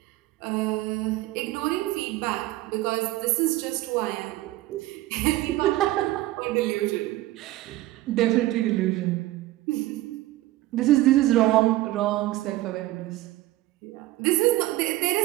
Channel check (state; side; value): quieter; left; 16.8 dB